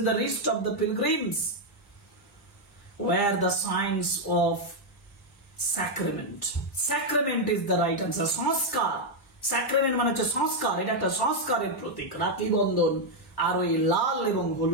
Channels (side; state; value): both; normal; correlation 0.00